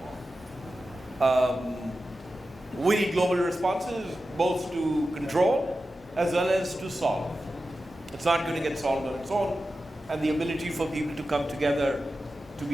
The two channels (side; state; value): both; normal; correlation 0.92